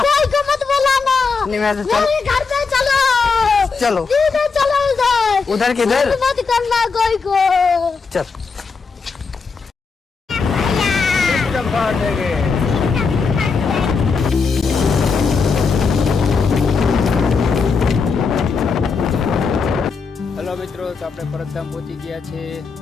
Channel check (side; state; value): right; quieter; 4.9 dB